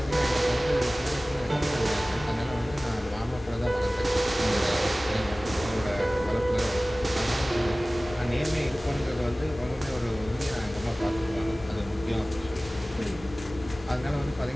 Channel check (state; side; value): normal; both; correlation 0.98